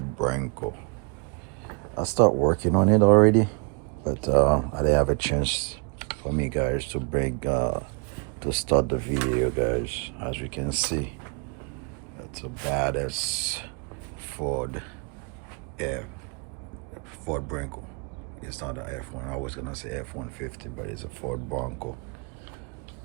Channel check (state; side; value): quieter; left; 34.6 dB